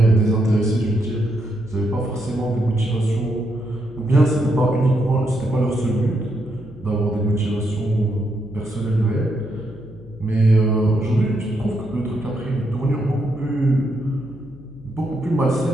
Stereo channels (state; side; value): noise; left; hum, 22 dB below the sound